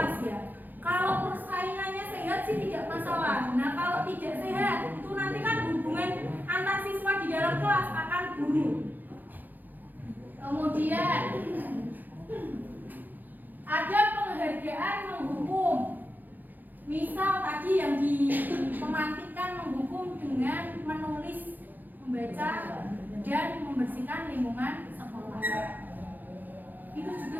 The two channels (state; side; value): late; left; 0.086 ms